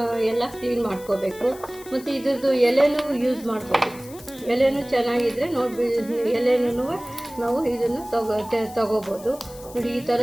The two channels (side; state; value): left; noise; hiss, 19 dB below the sound